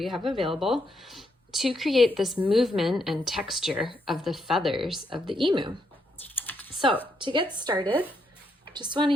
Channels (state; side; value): normal; both; correlation 0.78